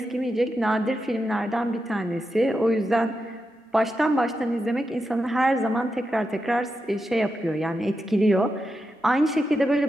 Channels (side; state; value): both; normal; correlation 0.87